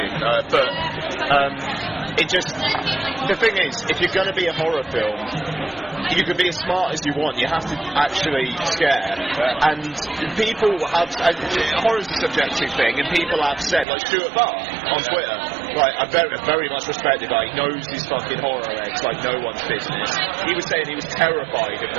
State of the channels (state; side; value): drops out; left; at 13.9 s